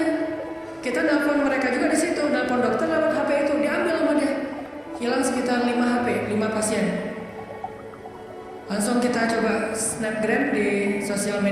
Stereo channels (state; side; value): identical; both; correlation 1.00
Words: Kita nelpon mereka juga di situ, nelpon dokter lewat HP itu, diambil sama dia. Hilang sekitar 5 HP, 5 pasien. Langsung Langsung kita coba snapgram di sosial